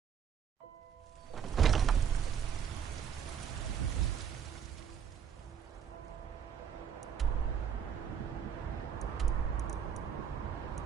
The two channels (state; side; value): quieter; left; 7.9 dB